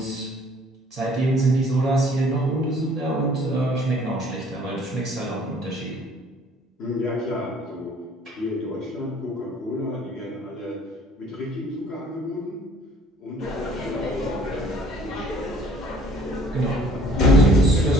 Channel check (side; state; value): both; normal; correlation 0.56